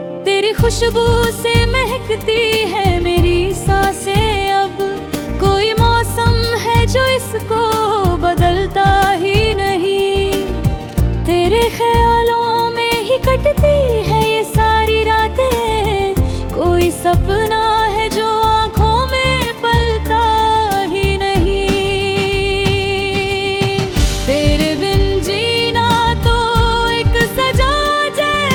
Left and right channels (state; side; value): identical; both; correlation 1.00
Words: तेरी खुशबू से महकती है मेरी सांसें, अब कोई मौसम है जो इसको बदलता ही नहीं। तेरे ख्यालों में ही कटती है ये सारी रातें, कोई सपना है जो आँखों में पलता ही नहीं। तेरे बिन जीना तो एक सजा